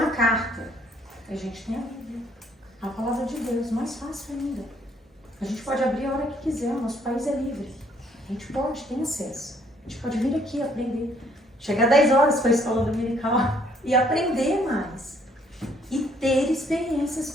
carta. A gente tem a Bíblia, a palavra de Deus, mais fácil ainda. A gente pode abrir a hora que quiser, o nosso país é livre. A gente pode, tem acesso. A gente pode vir aqui aprender. Chegar 10 horas para a escola dominical e aprender mais. E ter experiências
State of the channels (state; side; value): normal; both; correlation 0.65